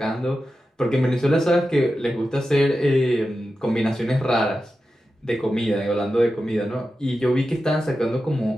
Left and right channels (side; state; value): both; normal; correlation 0.91